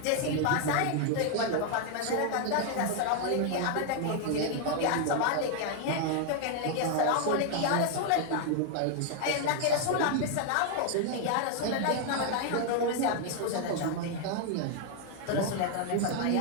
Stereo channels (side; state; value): both; different; correlation 0.00